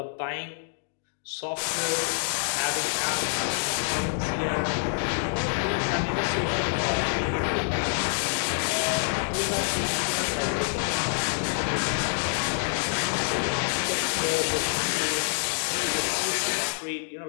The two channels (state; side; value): silent; right; digital silence